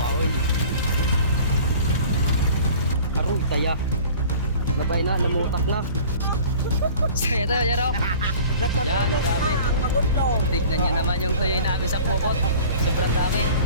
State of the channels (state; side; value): inverted; both; correlation -0.44